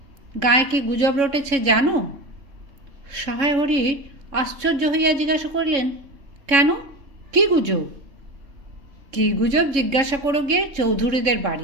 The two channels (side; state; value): left; late; 3.7 ms